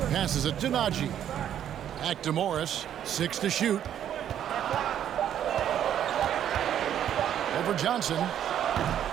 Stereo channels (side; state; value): left; quieter; 10.2 dB